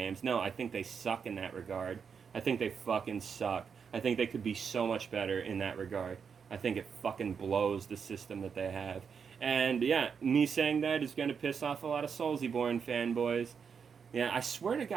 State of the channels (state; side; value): quieter; left; 6.4 dB